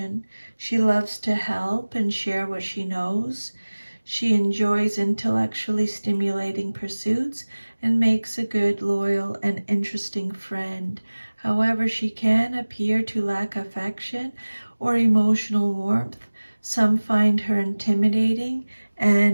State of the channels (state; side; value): inverted; both; correlation -1.00